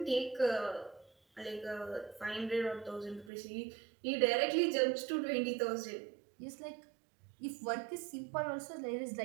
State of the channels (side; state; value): left; drops out; at 3.3 s